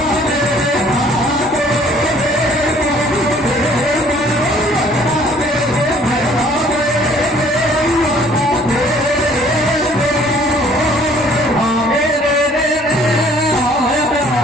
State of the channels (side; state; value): both; normal; correlation 0.57